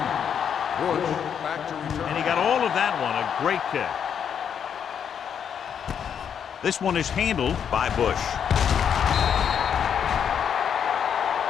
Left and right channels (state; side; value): quieter; right; 8.0 dB